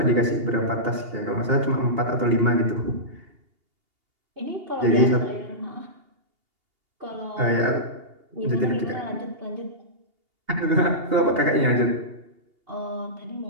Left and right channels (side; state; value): left; late; 2.8 ms